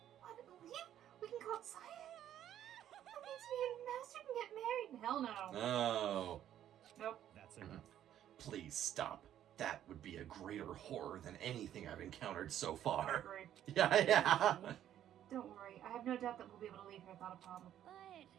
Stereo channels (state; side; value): quieter; left; 11.1 dB